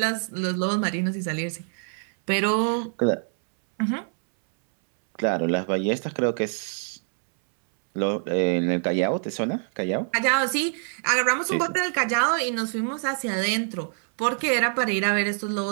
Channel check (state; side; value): silent; left; 62 dB below the other